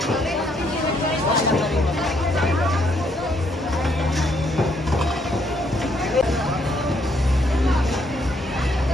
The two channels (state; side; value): normal; both; correlation 0.71